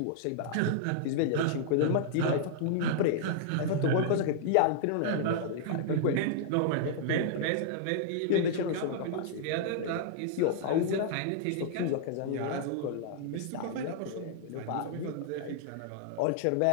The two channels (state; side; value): different; both; correlation -0.01